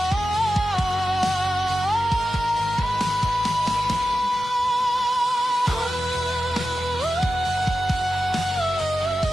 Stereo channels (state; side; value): normal; both; correlation 0.92